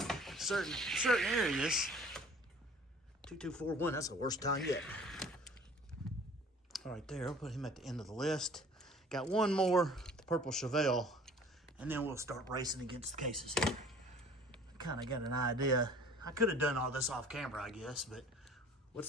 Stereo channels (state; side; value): normal; both; correlation 0.49